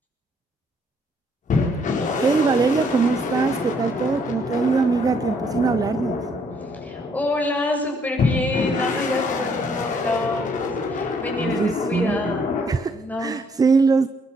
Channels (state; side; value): normal; both; correlation 0.68